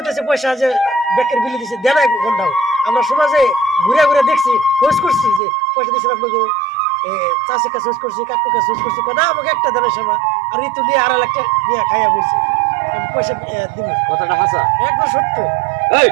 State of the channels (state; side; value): drops out; left; at 5.4 s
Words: পয়সা যে ব্যাংকের বিলি দিছে, দেয় না ঘন্টাও। আমরা সমাজে ঘুরে ঘুরে দেখছি, খোঁজ করছি যে পয়সা দিয়েছিলাম, চাষের কাছে খোঁজ করছি, কাকুর কাছে খোঁজ করছি, না আমাকে একটা দেনের সময়। আর ঋতু দিয়ে 2.5 লাখ টাকা নিয়ে খাইয়া বলছি আমি পয়সা দিব। কথাটা হাসা? একবার সত্য। এই